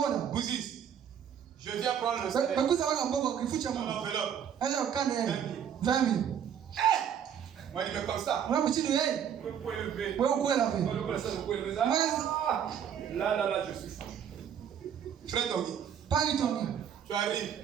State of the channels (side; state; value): left; quieter; 8.6 dB